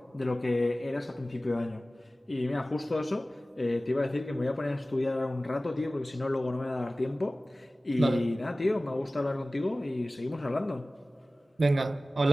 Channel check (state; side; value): normal; both; correlation 0.97